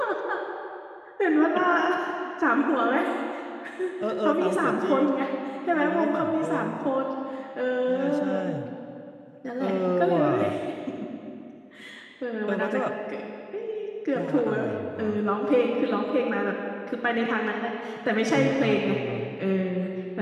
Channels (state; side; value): identical; both; correlation 1.00